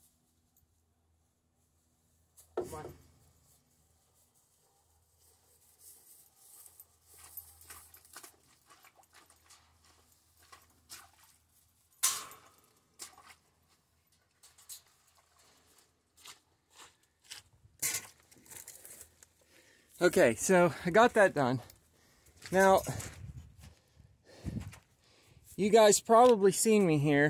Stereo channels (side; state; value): both; identical; correlation 1.00